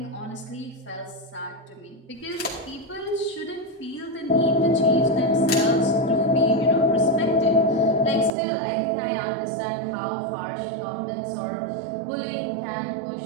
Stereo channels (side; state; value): left; drops out; at 8.3 s